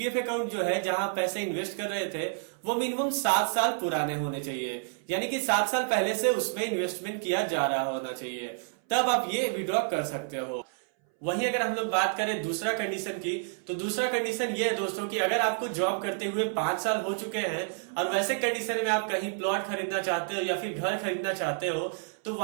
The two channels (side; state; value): left; silent; 58 dB below the other